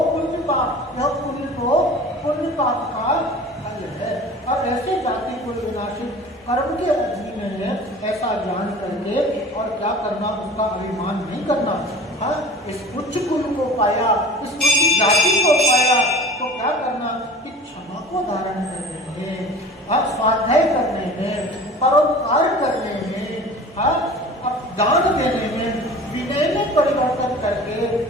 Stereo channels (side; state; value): both; normal; correlation 0.40